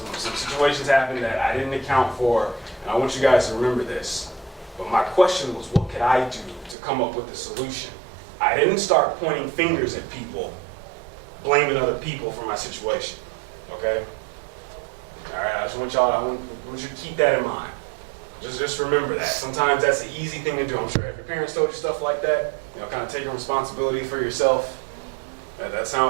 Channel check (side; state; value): left; drops out; at 6.8 s